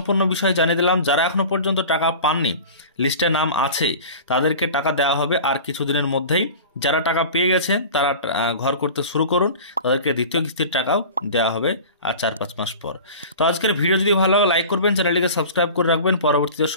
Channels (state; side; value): inverted; both; correlation -0.37